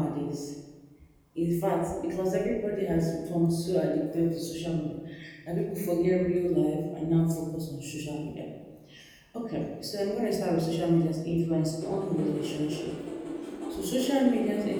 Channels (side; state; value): both; identical; correlation 1.00